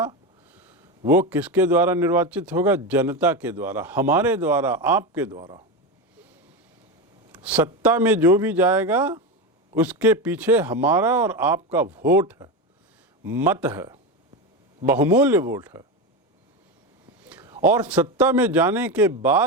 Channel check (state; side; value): normal; both; correlation 0.17